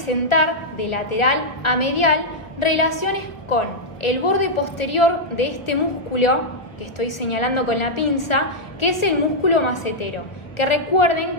de lateral a medial relaciones con el borde posterior de este músculo que estoy señalando con la pinza, que es el músculo macetero, que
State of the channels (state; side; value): late; right; 1.4 ms